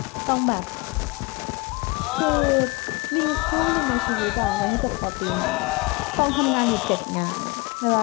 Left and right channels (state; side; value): quieter; right; 25.0 dB